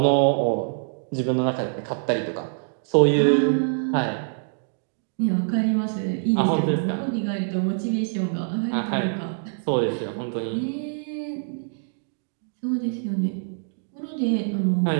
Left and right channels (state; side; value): silent; left; digital silence